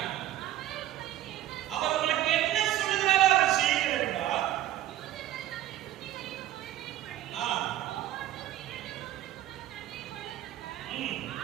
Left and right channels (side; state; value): left; quieter; 13.1 dB